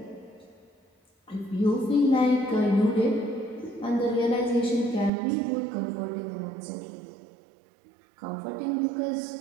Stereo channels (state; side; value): drops out; left; at 5.1 s